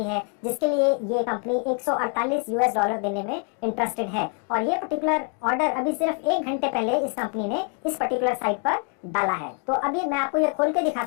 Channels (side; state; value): right; quieter; 39.3 dB